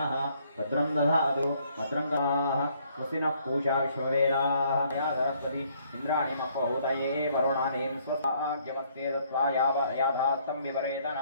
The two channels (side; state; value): both; inverted; correlation -0.66